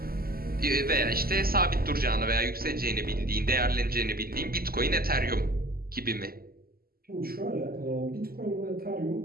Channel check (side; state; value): left; late; 0.43 ms